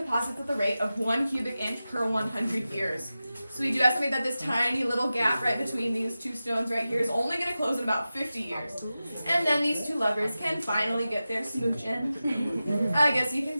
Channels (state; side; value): inverted; both; correlation -0.94